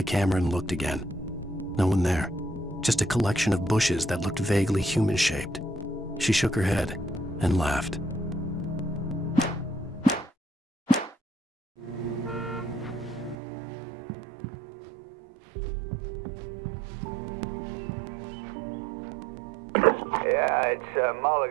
camera and looked again. No one there. Just a collection of bushes that looked vaguely human-shaped. She shook her head and laughed. Yeah, it's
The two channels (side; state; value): left; drops out; at 13.4 s